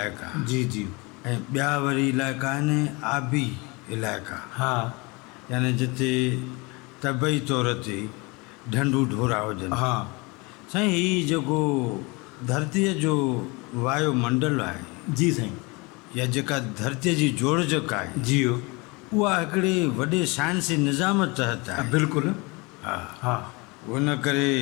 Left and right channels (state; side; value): quieter; right; 26.9 dB